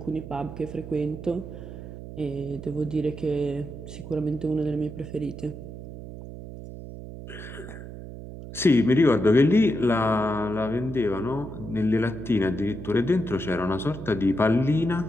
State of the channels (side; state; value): right; noise; hum, 11 dB below the sound